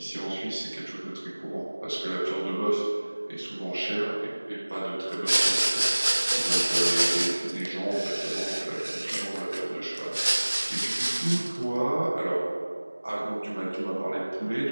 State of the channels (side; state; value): both; inverted; correlation -1.00